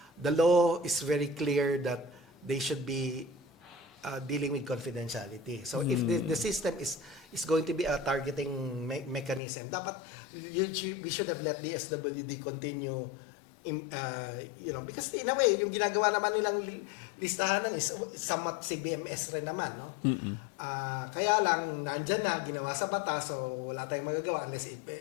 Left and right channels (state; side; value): drops out; right; at 9.4 s